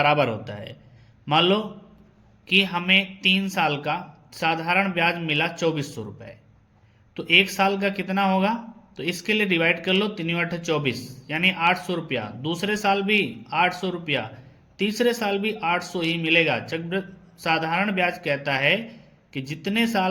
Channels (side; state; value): both; identical; correlation 1.00